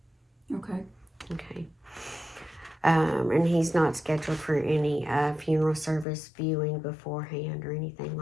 Okay, Okay. And he's not scheduled for any funeral service viewing beforehand or anything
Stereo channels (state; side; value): drops out; right; at 6.1 s